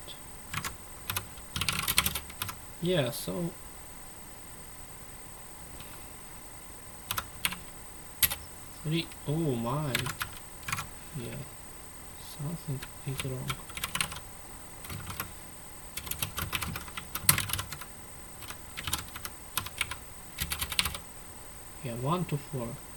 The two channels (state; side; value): identical; both; correlation 1.00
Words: Yeah, so three. Oh my. Yeah. Something is wrong. Yeah, 1 to 4.